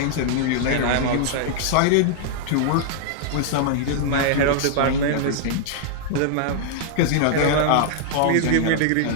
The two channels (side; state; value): both; different; correlation -0.01